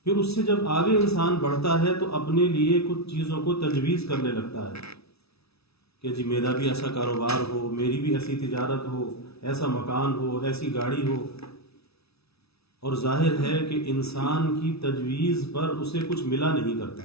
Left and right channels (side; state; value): right; late; 0.78 ms